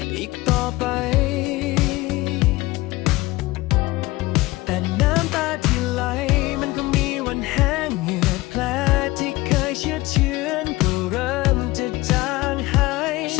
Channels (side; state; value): right; quieter; 19.9 dB